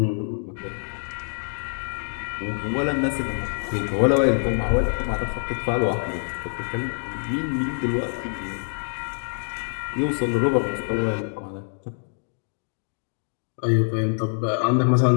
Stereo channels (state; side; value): silent; right; 62 dB below the other